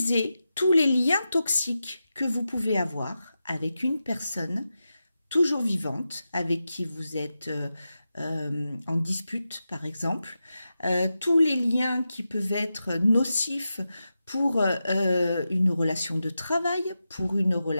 tous les liens toxiques que vous pouvez avoir avec une personne toujours vivante, avec qui vous êtes en dispute par exemple, tous les liens qui peuvent être nocifs pour une relation de travail, pour une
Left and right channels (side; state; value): both; inverted; correlation -0.91